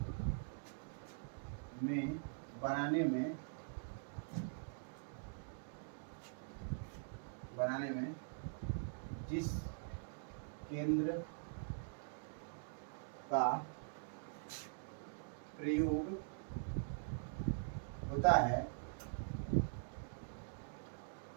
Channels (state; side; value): silent; left; digital silence